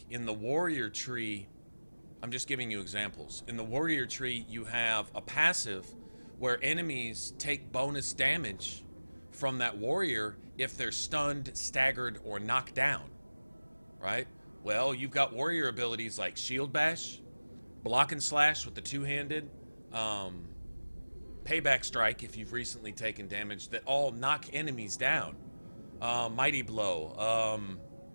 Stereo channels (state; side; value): inverted; both; correlation -1.00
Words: in the warrior tree, I'm just giving you examples. In the warrior tree, you have a passive where enemies take bonus damage from that warrior if they're stunned, staggered, or knocked down, right? Well, you've got warrior abilities like Shield Bash, Block and Slash with the two-handed, Payback Strike if you've recently taken damage, that all knock enemies down. Mighty Blow.